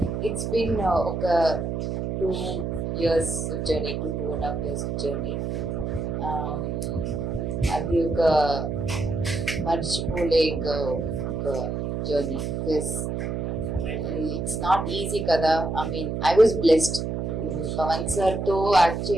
It's been 2 years journey, 2.5 years journey. అది ఒక మర్చిపోలేక ఒక journey because it's not easy కదా. I mean I was blessed. Pavan sir తో యాక్ట్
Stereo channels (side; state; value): right; noise; hum, 2 dB below the sound